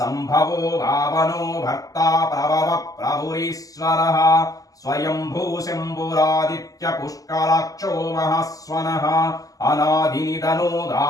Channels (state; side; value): late; right; 0.17 ms